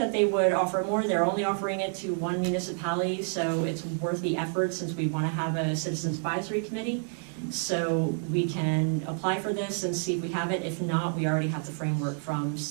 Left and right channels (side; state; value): left; silent; 59 dB below the other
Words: they would offer more. They're only offering it to one municipality, so it's worth the effort since we want to have a citizens advisory committee. So we can apply for this and see if we have it. If not, we already have the framework from